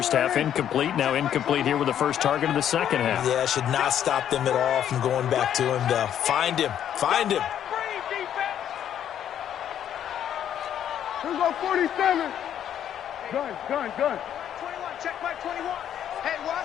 half, incomplete. Now incomplete here with the first target of the second half. Yeah, should not stop them at all from going back to him, though. Find him. Find him. Here's go 47. Gun. 21. Check Mike 21. Hey, watch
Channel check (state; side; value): quieter; right; 10.0 dB